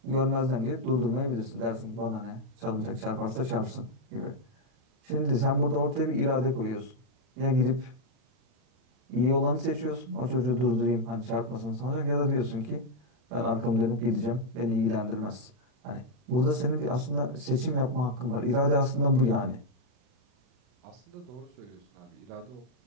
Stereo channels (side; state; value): left; late; 40 ms